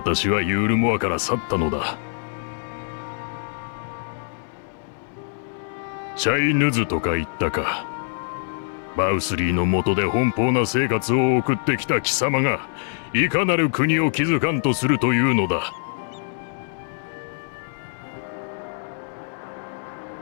はユールモアから去ったのだ。チャイヌズとか言ったか。バウスリーの下で奔放な生活を送ってきた貴様が、いかなる国を築かんとするというのだ。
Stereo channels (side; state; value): right; silent; 63 dB below the other